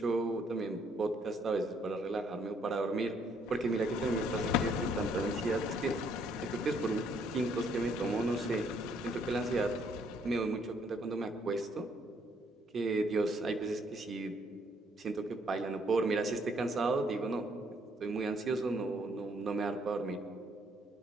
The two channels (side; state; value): both; normal; correlation 0.68